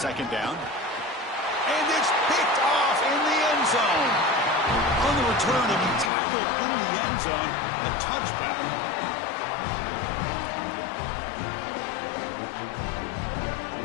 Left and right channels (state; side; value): drops out; right; at 6.1 s